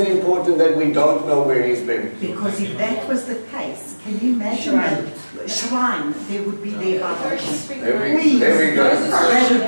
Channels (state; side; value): inverted; both; correlation -1.00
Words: important that we don't know where he's buried? Because if that was the case, can you imagine a shrine there would be there by There we go.